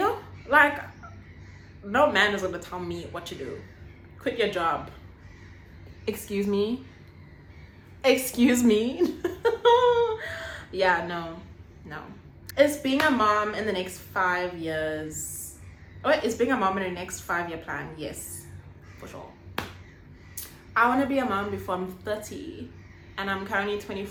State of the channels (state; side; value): identical; both; correlation 1.00